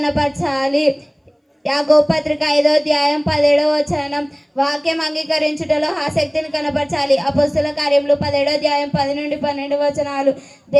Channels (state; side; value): identical; both; correlation 1.00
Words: యాకోబు పత్రిక 5వ అధ్యాయం 17వ వచనం. వాక్యం అంగీకరించుటలో ఆసక్తిని కనపరచాలి. అపొస్తలుల కార్యములు 17వ అధ్యాయం 10 నుండి 12 వచనాలు.